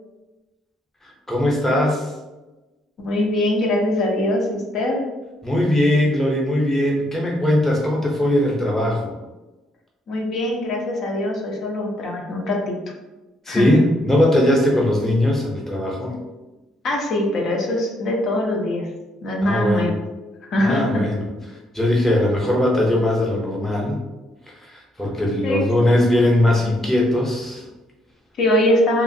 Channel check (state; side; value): normal; both; correlation 0.73